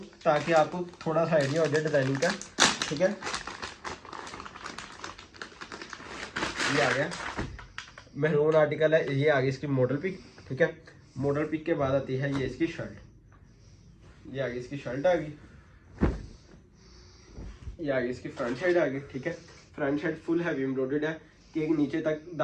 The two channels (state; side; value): identical; both; correlation 1.00